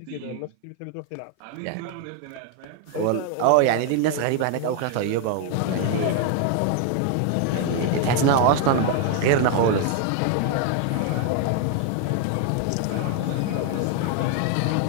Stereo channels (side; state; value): both; different; correlation 0.00